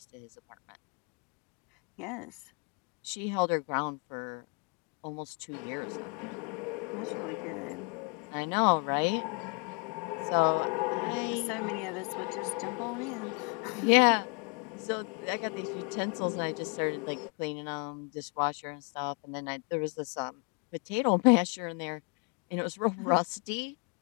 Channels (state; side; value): quieter; right; 35.0 dB